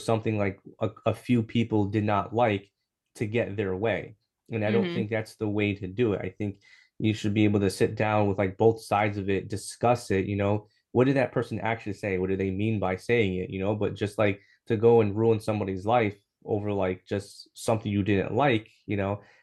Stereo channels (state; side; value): identical; both; correlation 1.00